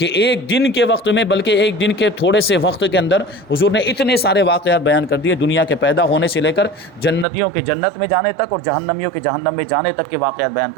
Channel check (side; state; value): left; drops out; at 7.2 s